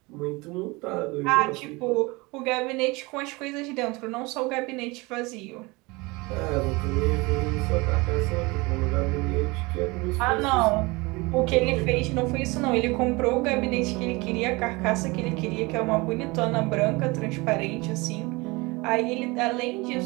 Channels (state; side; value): quieter; left; 24.5 dB